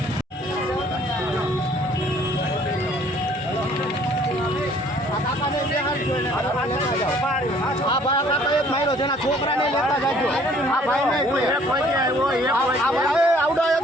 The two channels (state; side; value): normal; both; correlation 0.58